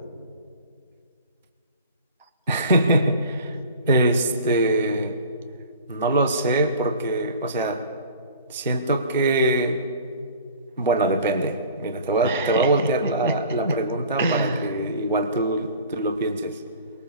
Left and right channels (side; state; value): both; inverted; correlation -0.44